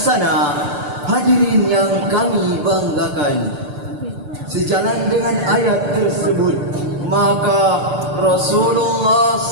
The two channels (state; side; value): late; left; 6.8 ms